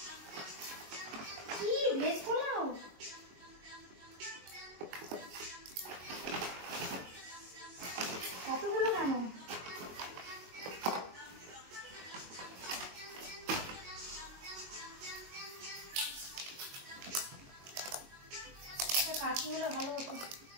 কি ভেজ পোলাও, এতগুলো কেন? কাশি হলে ভালো হতো।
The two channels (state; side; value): late; left; 22 ms